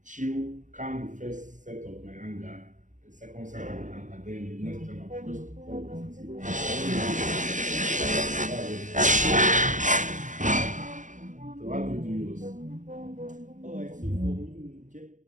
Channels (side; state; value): left; late; 0.36 ms